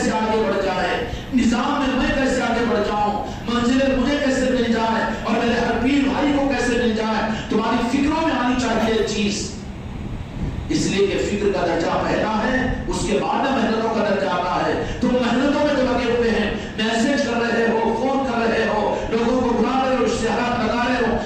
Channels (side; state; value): both; identical; correlation 1.00